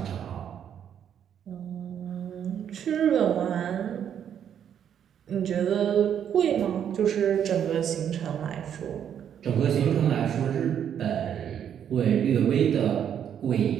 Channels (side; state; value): left; quieter; 9.0 dB